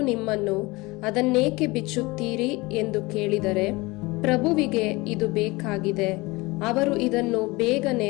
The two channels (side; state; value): right; quieter; 23.0 dB